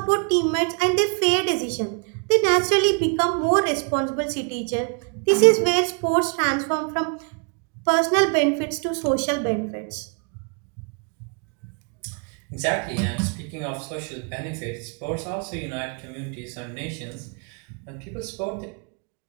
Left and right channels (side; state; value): left; quieter; 38.9 dB